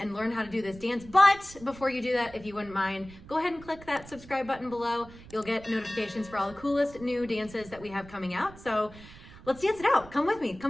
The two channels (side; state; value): right; noise; rumble, 19 dB below the sound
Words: learn how to do this dance. But before you do that, if you wouldn't mind, go ahead and click that subscribe button below. You'll get notifications for all the coolest new dances that we have coming out. So let's dance it out. Come with me.